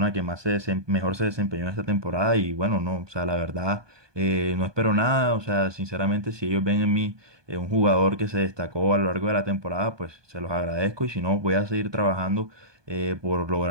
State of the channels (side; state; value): left; late; 1.2 ms